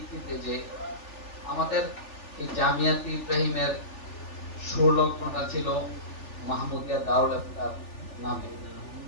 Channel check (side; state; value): right; late; 3.4 ms